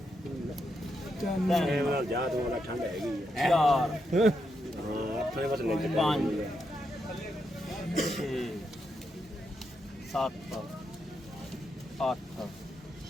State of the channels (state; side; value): normal; both; correlation 0.82